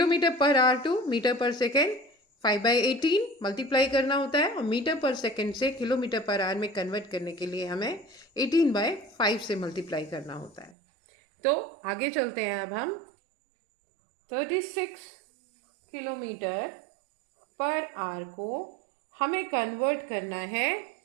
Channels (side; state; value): left; drops out; at 10.8 s